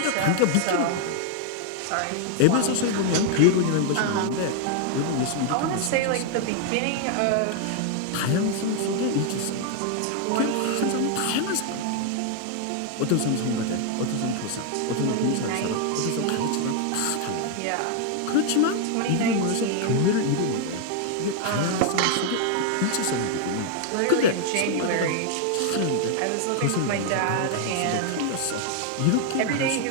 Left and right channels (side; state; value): both; different; correlation 0.00